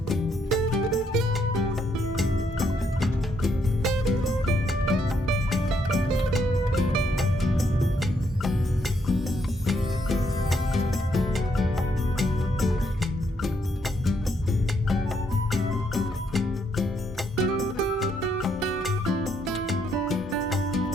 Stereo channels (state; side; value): normal; both; correlation 0.74